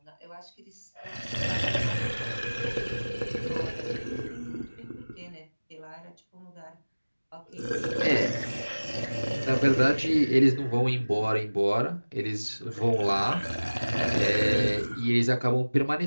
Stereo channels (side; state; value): both; inverted; correlation -1.00